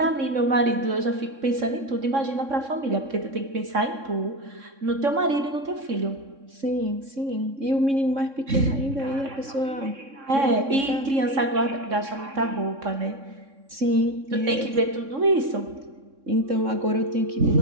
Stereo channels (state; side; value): late; left; 3.6 ms